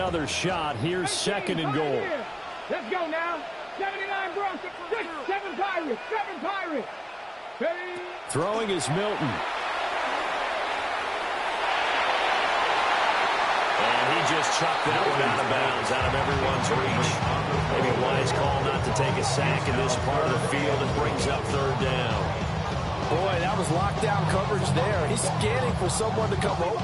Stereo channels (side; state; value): both; identical; correlation 1.00